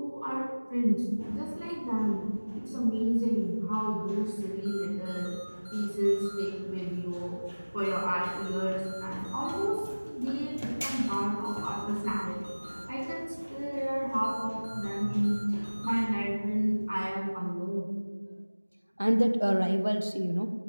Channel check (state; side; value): inverted; both; correlation -1.00